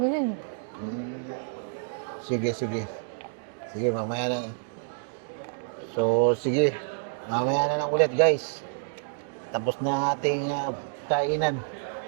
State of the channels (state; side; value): silent; left; digital silence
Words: Sige, sige. Sige, mamaya na. So, sige. Mamaya na lang ulit, guys. Tapos na ating kainan.